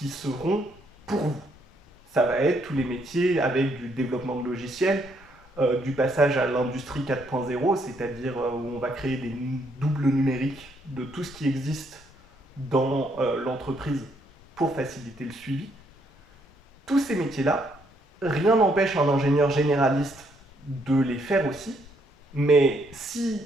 seront pour vous. Ça va être tous les métiers avec du développement de logiciels, du passage à l'industrie 4.0, c'est-à-dire où on va créer des doubles numériques de tout ce qui existe dans l'entreprise pour faciliter le suivi. Tous ces métiers-là, rien n'empêche un ingénieur généraliste de les faire aussi, mais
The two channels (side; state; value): both; normal; correlation 0.72